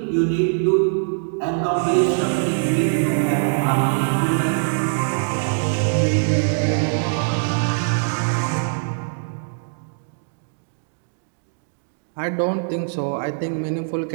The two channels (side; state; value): left; silent; digital silence